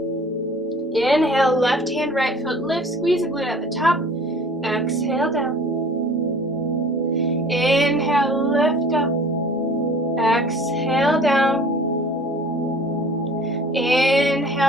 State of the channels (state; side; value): normal; both; correlation 0.48